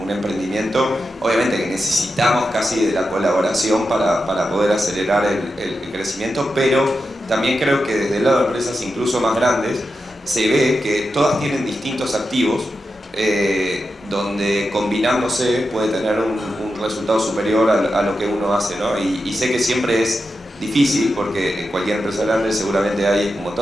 un emprendimiento, obviamente que necesitamos casi de la colaboración para poder acelerar el crecimiento, pero también creo que desde el lado de empresas incluso más grandes se ve que todas tienen distintos activos donde combinándose puede tener un resultado superior a lo que uno hace, ¿no? Y sé que siempre es difícil porque en cualquier empresa grande seguramente hay un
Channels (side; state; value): both; normal; correlation 0.89